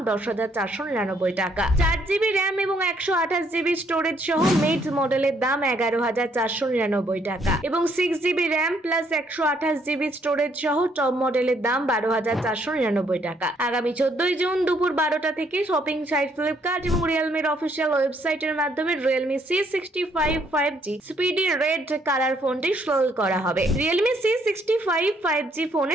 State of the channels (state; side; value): normal; both; correlation 0.69